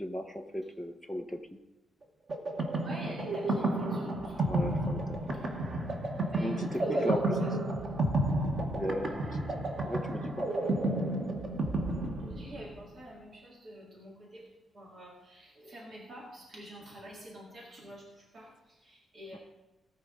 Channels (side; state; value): both; normal; correlation 0.73